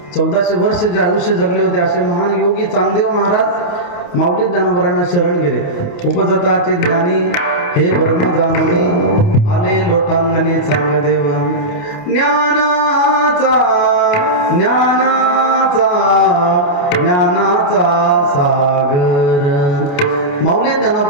1400 वर्ष जे आयुष्य जगले होते असे महान योगी चांगदेव महाराज माऊली ज्ञानोबरांना शरण गेले. उपजताचे ज्ञानी हे ब्रह्म जाणूनी आले लोटांगणी चांगदेव. ज्ञानाचा ज्ञानाचा ज्ञानाचा सागर. माऊली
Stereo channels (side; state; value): right; late; 28 ms